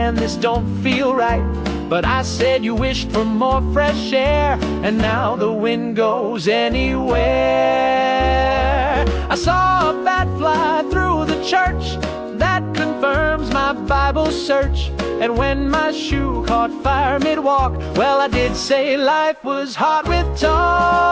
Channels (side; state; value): both; identical; correlation 1.00